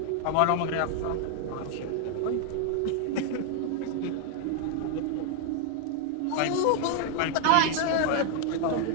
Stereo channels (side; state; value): both; different; correlation 0.00